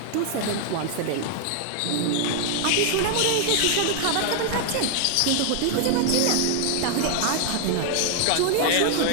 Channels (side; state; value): both; different; correlation 0.00